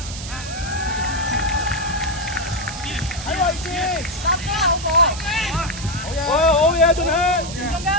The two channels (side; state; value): right; noise; hiss, 11 dB below the sound